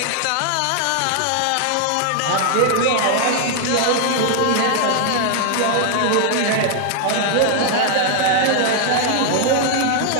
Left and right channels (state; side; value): different; both; correlation 0.00